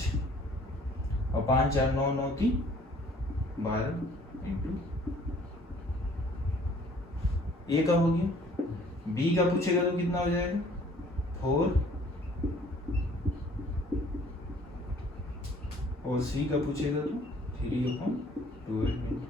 और 5, 4, 9, 9, 3, 12 इंटू ए का हो गया, बी का पूछेगा तो कितना हो जाएगा 4, और सी का पूछेगा तो 3/12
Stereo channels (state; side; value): normal; both; correlation 0.56